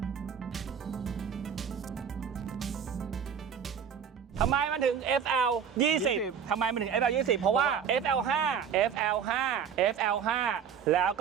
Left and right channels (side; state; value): left; quieter; 7.5 dB